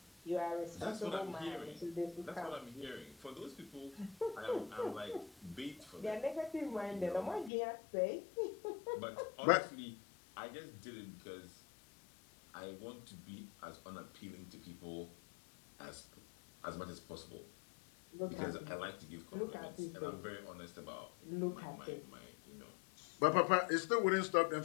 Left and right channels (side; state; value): right; drops out; at 7.5 s